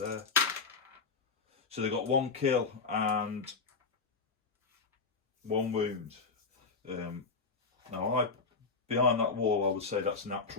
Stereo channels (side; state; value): right; quieter; 4.6 dB